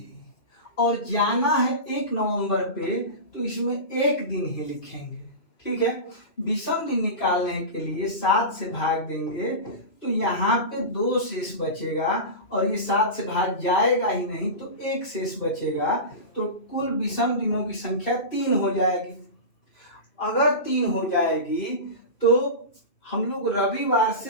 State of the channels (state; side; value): late; right; 2.6 ms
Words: और जाना है 1 नवंबर पे, तो इसमें एक दिन ही लिखेंगे, ठीक है। विषम दिन निकालने के लिए 7 से भाग देंगे तो यहाँ पे 2 शेष बचेगा, और ये 7 से भाग जाएगा ही नहीं तो 1 शेष बचेगा, तो कुल विषम दिनों की संख्या 3 हो जाएगी। अगर 3 हो जाएगी तो हम लोग रविवार